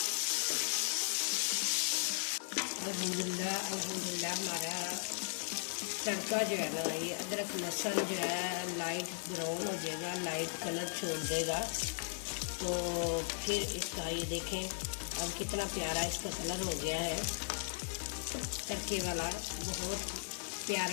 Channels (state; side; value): silent; right; digital silence